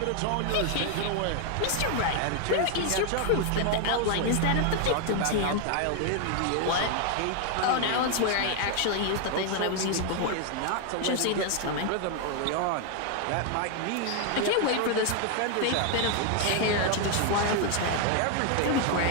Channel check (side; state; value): both; different; correlation 0.00